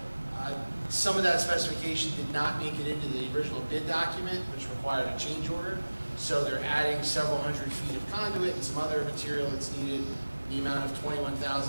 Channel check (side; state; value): both; inverted; correlation -1.00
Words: some of that specification did not make it into the original bid document, which required a change order. So they're adding several hundred feet of conduit and some other material that's needed in the amount of